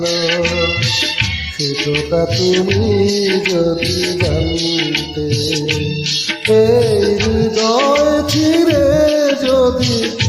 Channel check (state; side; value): identical; both; correlation 1.00